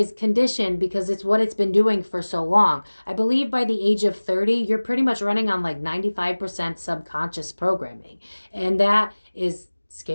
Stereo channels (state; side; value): inverted; both; correlation -1.00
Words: conditioned because it's what it's been doing for so long. I believe by the age of 30, you're pretty much running on like 95% subconscious programming. And that is